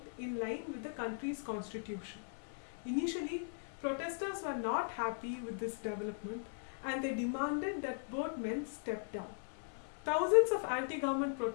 in line with the country's constitution. Initially, protesters were not happy with this development and they demanded that both men step down. Thousands of anti-government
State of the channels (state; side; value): silent; right; 52 dB below the other